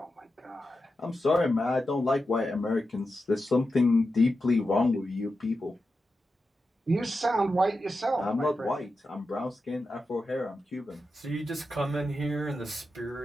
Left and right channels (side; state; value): both; normal; correlation 0.90